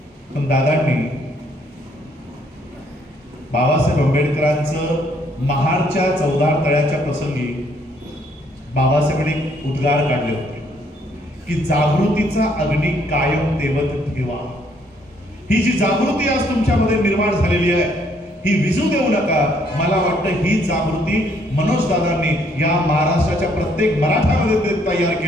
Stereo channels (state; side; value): normal; both; correlation 0.67